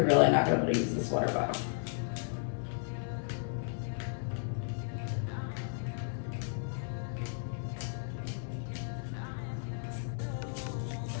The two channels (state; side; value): silent; right; digital silence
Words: really not going to be able to use this water bottle.